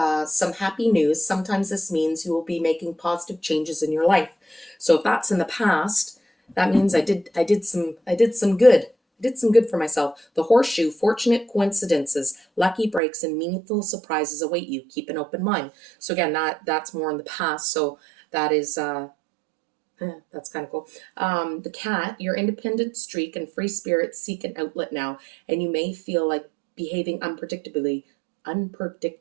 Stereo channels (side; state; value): left; drops out; at 13.0 s